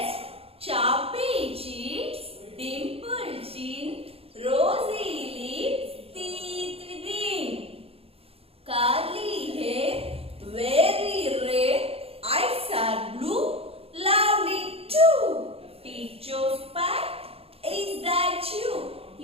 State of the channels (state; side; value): late; left; 0.28 ms